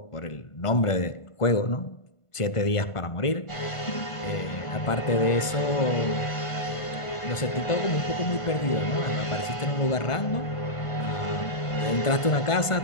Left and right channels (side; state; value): right; late; 1.5 ms